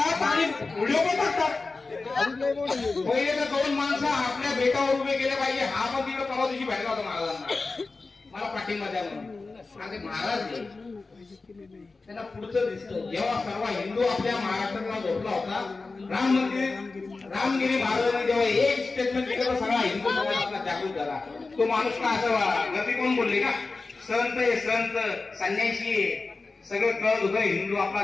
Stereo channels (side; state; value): right; quieter; 3.8 dB